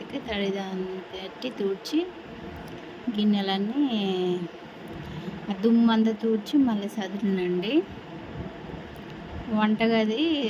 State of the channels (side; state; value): both; identical; correlation 1.00